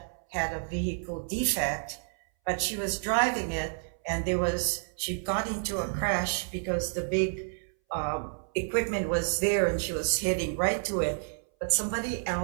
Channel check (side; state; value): left; silent; 58 dB below the other